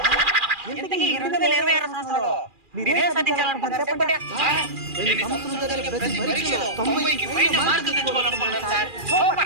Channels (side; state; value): left; late; 2.4 ms